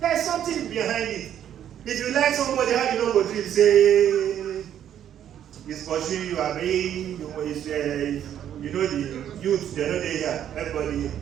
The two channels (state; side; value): quieter; left; 10.2 dB